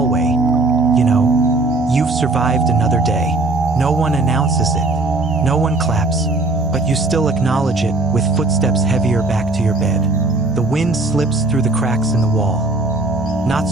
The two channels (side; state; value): left; quieter; 3.1 dB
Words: you know, you've survived another day. No one announces it, no one claps, but you still acknowledge it with footsteps heavier back to your bed. The wind slips through the cracks in the wall, not